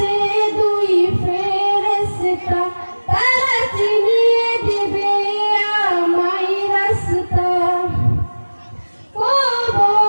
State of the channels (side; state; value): both; inverted; correlation -1.00